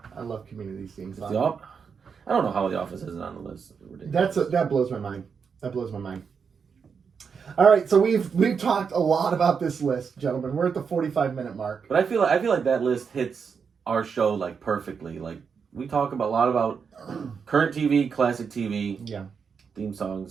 I love Community's theme song. I don't know how The Office isn't on the list. That blows my mind. That blows my mind. All right, so we've talked a lot about this list, gentlemen. We're at the 45-minute mark. But I feel like that list hits our show like perfectly. Like we talk a lot about current TV, classic TV, theme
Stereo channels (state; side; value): quieter; left; 6.1 dB